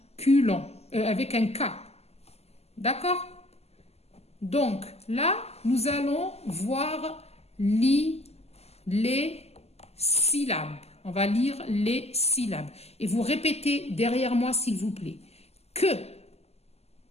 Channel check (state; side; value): late; right; 0.30 ms